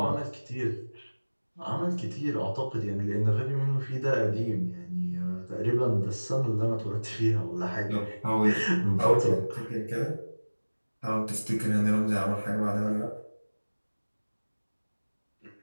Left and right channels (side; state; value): both; inverted; correlation -1.00